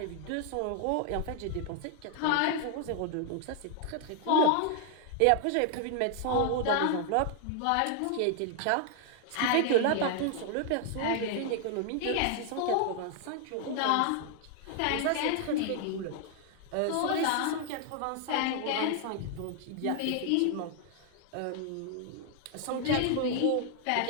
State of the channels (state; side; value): different; both; correlation 0.00